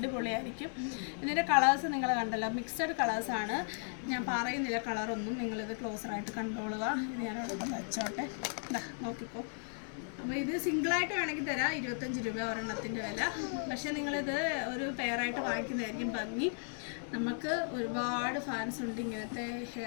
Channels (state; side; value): silent; right; 54 dB below the other